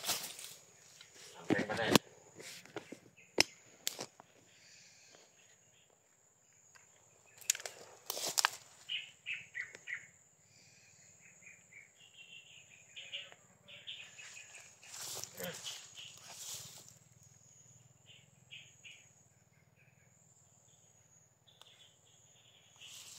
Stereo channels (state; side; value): identical; both; correlation 1.00